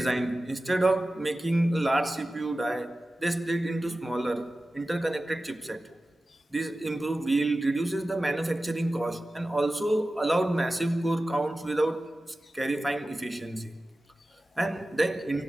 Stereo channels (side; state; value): both; normal; correlation 0.95